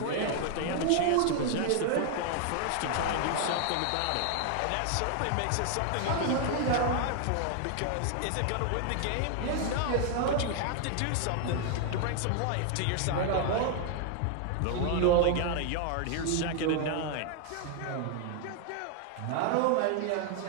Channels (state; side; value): different; both; correlation 0.00